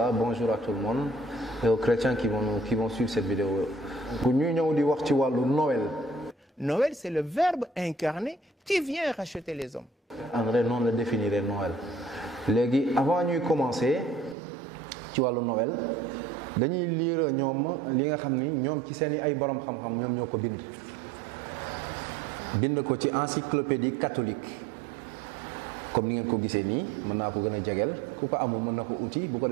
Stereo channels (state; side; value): drops out; left; at 14.4 s